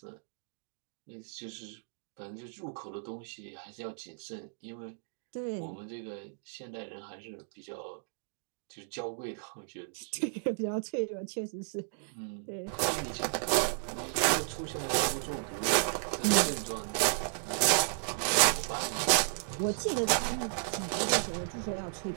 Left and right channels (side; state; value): left; silent; digital silence